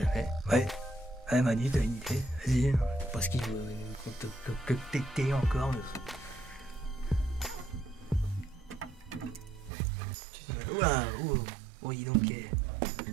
Ouais, Manu, t'as une idée? Vas-y, parce qu'il veut que t'es encore. Oula, oh, dis donc,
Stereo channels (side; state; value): left; drops out; at 9.7 s